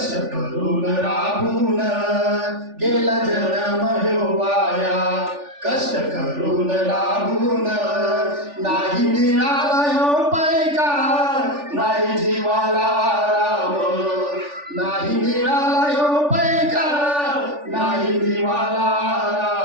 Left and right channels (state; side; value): late; left; 3.4 ms